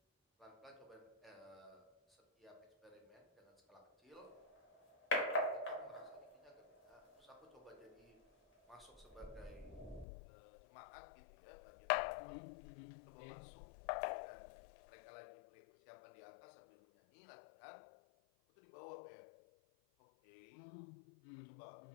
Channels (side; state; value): right; drops out; at 10.1 s